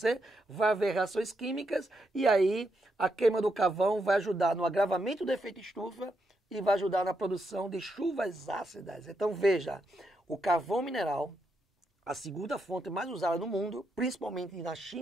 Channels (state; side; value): normal; both; correlation 0.81